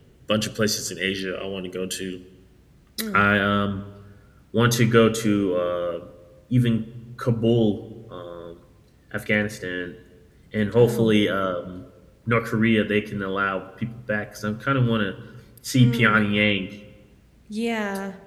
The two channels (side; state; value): both; identical; correlation 1.00